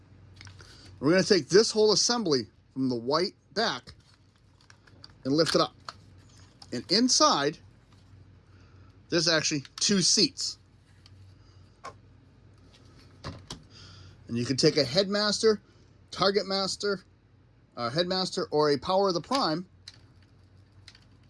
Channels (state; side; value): identical; both; correlation 1.00